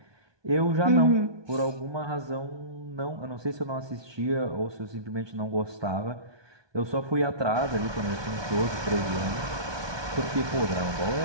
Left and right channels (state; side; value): late; left; 1.2 ms